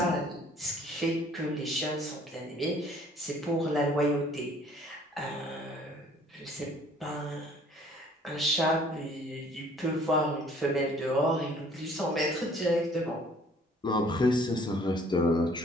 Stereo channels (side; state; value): both; normal; correlation 0.57